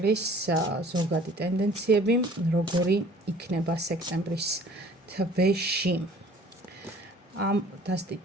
ზოგადი ტენდენციები, როგორი იქნება სექტემბრის თვეში. ამ დასტით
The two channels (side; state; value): both; normal; correlation 0.51